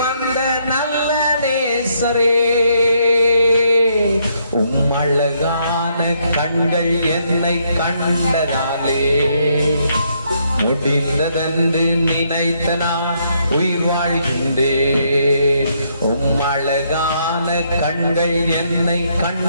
வந்த நல்ல நேசரே, உம் அழகான கண்கள் என்னை கண்டதாலே முடிந்ததென்று நினைத்த நான் உயிர் வாழ்கின்றேன். உம் அழகான கண்கள் என்னை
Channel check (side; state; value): both; inverted; correlation -0.73